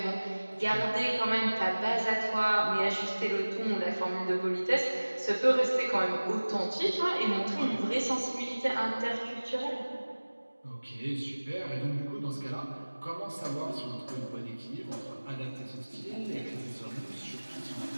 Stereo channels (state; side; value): inverted; both; correlation -1.00